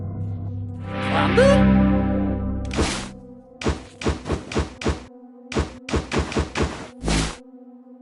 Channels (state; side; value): identical; both; correlation 1.00